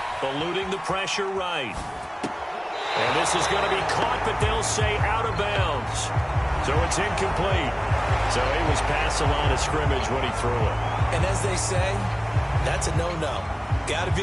Eluding the pressure right. And this is going to be caught, but they'll say out of bounds. So it's incomplete. So he was past the line of scrimmage when he threw it. And as they say, that's a no-no. Got to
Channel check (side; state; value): both; identical; correlation 1.00